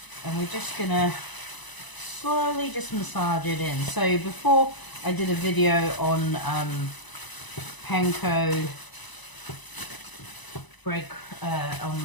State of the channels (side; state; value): right; late; 1.0 ms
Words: and we're just going to slowly just massage it in. So before I did a video on panko bread,